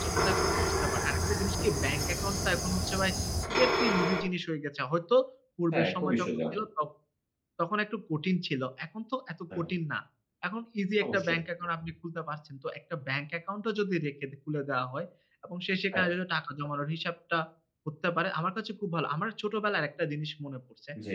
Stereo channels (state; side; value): identical; both; correlation 1.00